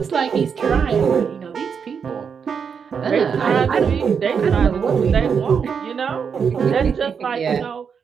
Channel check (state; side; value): quieter; left; 6.6 dB